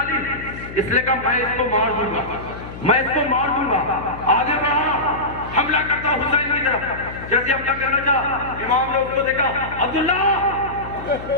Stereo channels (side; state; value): left; noise; hum, 12 dB below the sound